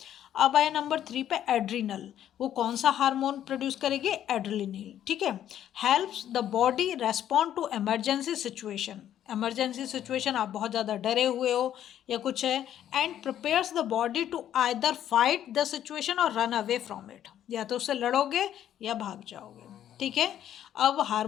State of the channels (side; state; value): right; quieter; 10.9 dB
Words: अब आया नंबर 3 पे एड्रिनल। वो कौन सा हार्मोन प्रोड्यूस करेगी? एड्रेलिनिल, ठीक है। Helps the body respond to emergency situation. Emergency situation, आप बहुत ज़्यादा डरे हुए हो या कुछ है, and prepares the body to either fight the situation और रन अवे फ्रॉम इट। या तो उससे लड़ोगे या भाग जाओगे, ठीक है। अब